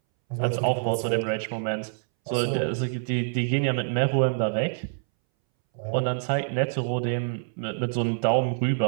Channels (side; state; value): left; silent; 61 dB below the other